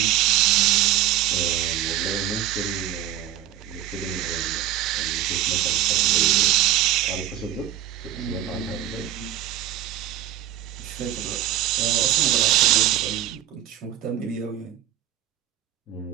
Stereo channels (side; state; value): left; quieter; 12.0 dB